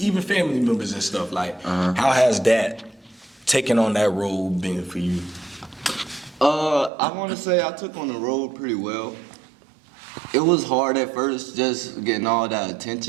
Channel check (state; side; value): drops out; left; at 6.9 s